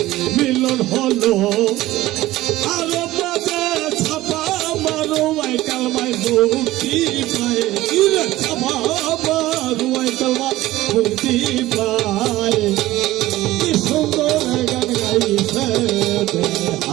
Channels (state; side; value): quieter; left; 16.6 dB